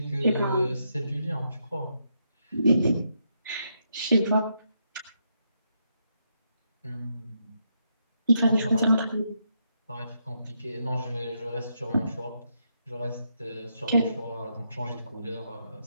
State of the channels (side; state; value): both; inverted; correlation -0.80